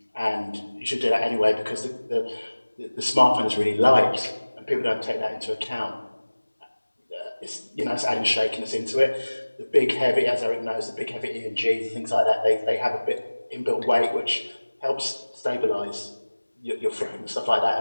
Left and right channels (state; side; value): inverted; both; correlation -1.00